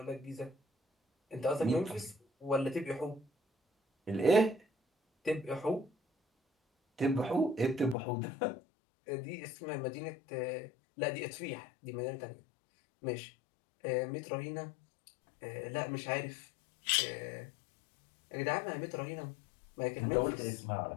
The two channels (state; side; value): drops out; right; at 8.0 s